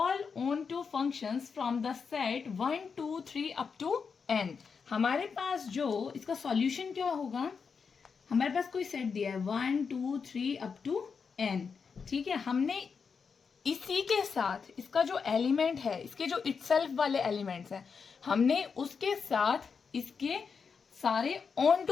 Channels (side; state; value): right; quieter; 5.7 dB